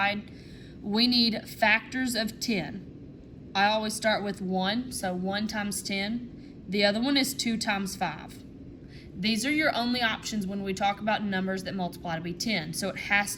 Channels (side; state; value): both; identical; correlation 1.00